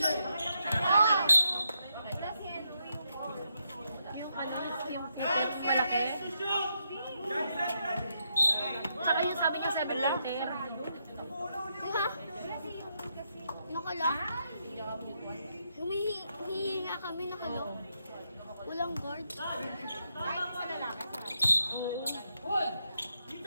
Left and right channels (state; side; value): inverted; both; correlation -0.81